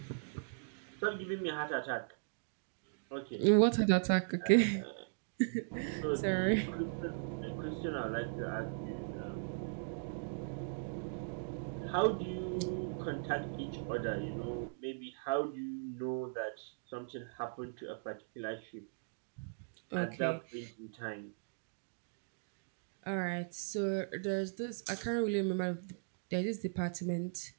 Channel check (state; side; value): silent; left; digital silence